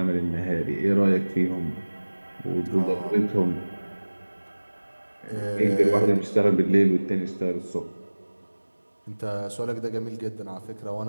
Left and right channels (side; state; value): both; inverted; correlation -1.00